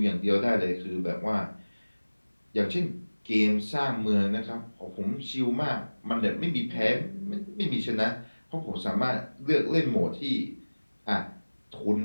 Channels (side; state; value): both; inverted; correlation -1.00